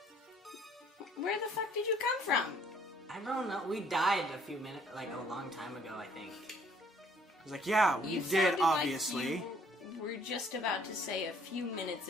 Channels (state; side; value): normal; both; correlation 0.62